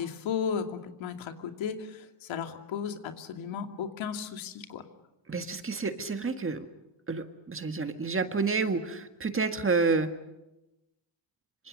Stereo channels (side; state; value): both; normal; correlation 0.08